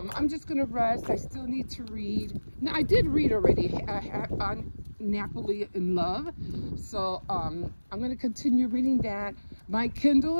just gonna rest. I still need to read. Now, I did read already on Napoli in Love, so I'm gonna continue reading that. My Kindle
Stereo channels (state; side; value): inverted; both; correlation -1.00